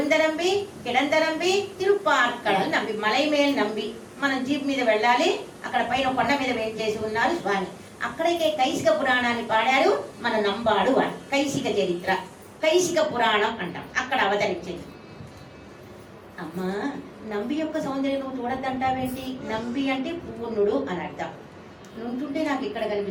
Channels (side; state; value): both; identical; correlation 1.00